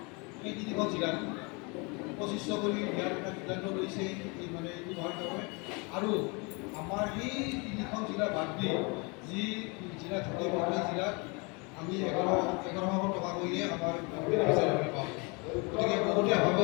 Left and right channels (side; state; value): right; quieter; 30.3 dB